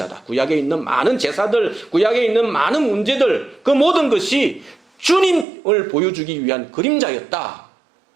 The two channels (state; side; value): drops out; left; at 5.5 s